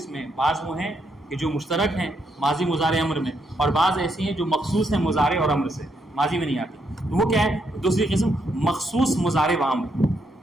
ہیں، بعض وہ ہیں کہ جو مشترک ہیں ماضی مضارع امر میں، اور بعض ایسی ہیں جو مخصوص ہیں مضارع اور امر سے، ماضی میں نہیں آتی، تو وہ کیا ہے؟ دوسری قسم مخصوص مضارع و امر،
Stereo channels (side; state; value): both; normal; correlation 0.77